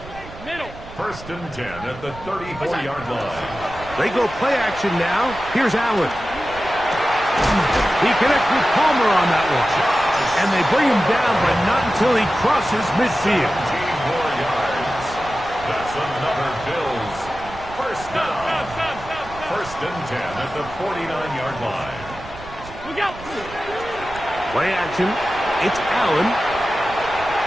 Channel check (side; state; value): right; noise; rumble, 16 dB below the sound